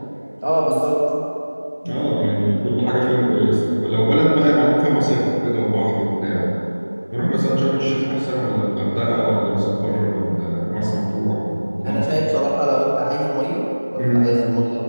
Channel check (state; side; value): inverted; both; correlation -1.00